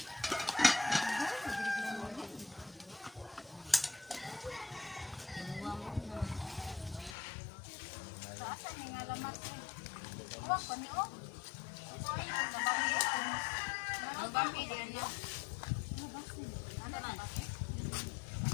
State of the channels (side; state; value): right; drops out; at 7.2 s